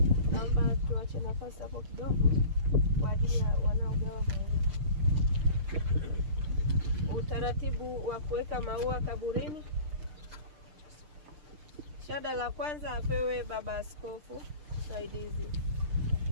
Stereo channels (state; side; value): late; left; 6.6 ms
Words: Naomba tuache nafasi hapo kidogo kwa ajili ya wanaogawa maua. Utaratibu wa kuweka maua kaburini. Shada la kwanza apewe baba askofu msaidizi.